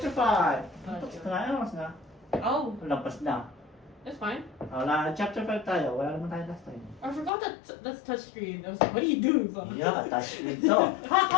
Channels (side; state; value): right; drops out; at 7.3 s